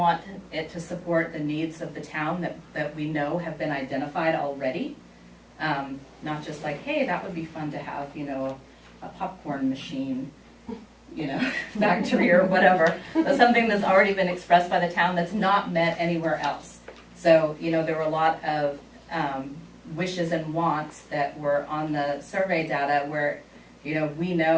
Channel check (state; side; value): identical; both; correlation 1.00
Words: it to support the needs of the town that we know have been identified already. Not just like, hey, that would be fun to have, you know, a popcorn machine, you know, factory or whatever, but something that's already been expressed by the town that's not met anywhere else. So, you know, there were a lot of wishes and wants that were on the survey data where, you know, we